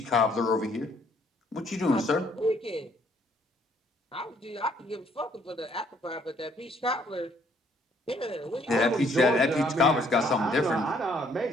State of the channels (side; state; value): both; normal; correlation 0.65